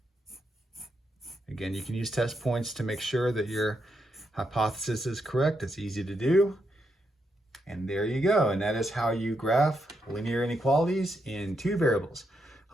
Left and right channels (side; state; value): both; normal; correlation 0.81